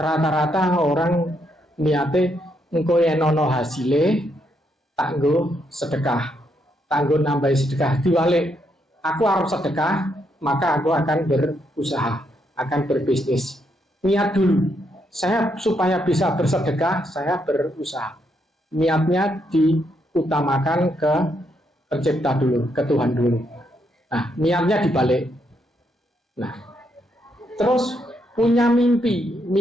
rata-rata orang niate engko yen ana hasile tak nggo sedekah, tak nggo nambahi sedekah. Diwalik, aku harus sedekah, maka aku akan berusaha, akan berbisnis. Niat dulu, saya supaya bisa bersedekah, saya berusaha. Niatnya diutamakan ke pencipta dulu, ke Tuhan dulu. Nah, niatnya dibalik. Nah, terus punya mimpi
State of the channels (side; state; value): both; normal; correlation 0.77